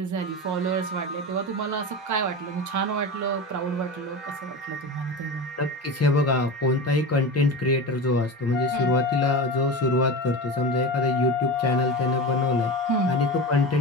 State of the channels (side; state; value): both; normal; correlation 0.27